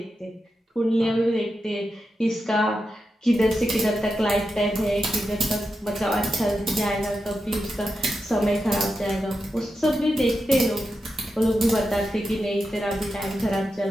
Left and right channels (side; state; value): both; normal; correlation 0.88